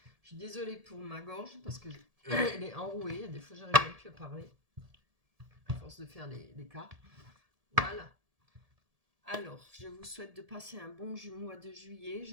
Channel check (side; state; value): left; late; 1.7 ms